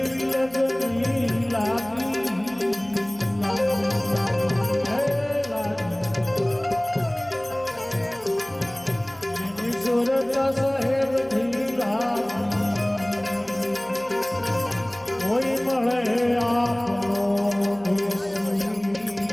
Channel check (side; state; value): left; noise; hum, 28 dB below the sound